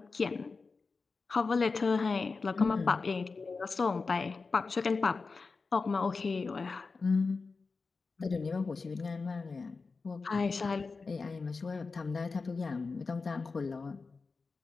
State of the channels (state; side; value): quieter; right; 4.3 dB